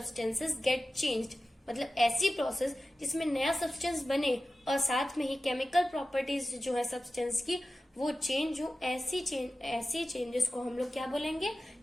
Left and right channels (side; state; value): both; normal; correlation 0.95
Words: get changed, मतलब ऐसी प्रोसेस जिसमें नया सब्सटेंस बने और साथ में ही केमिकल प्रॉपर्टीज जो है सब्सटेंस की वो चेंज हो, ऐसी चेंजेस को हम लोग क्या बोलेंगे,